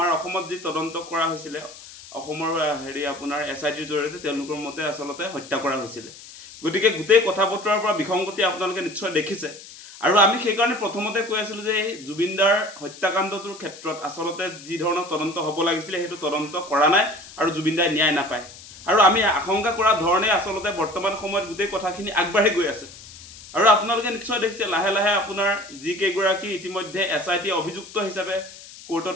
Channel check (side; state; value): left; noise; hiss, 17 dB below the sound